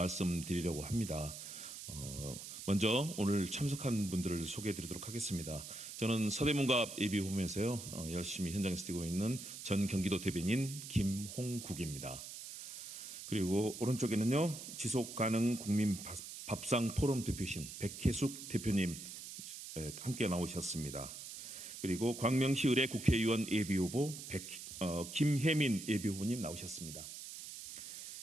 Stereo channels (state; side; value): noise; right; hiss, 10 dB below the sound